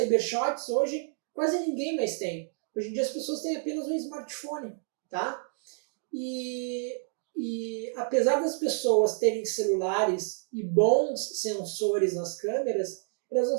hoje quase ninguém mais tem. Hoje em dia as pessoas têm apenas um smartphone, tá? E apesar das pessoas terem celulares e bons sensores nas câmeras, elas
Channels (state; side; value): silent; left; 58 dB below the other